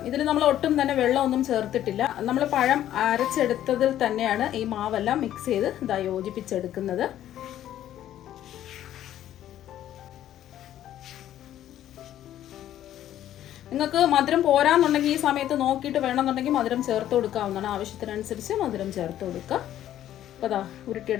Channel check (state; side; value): quieter; right; 12.0 dB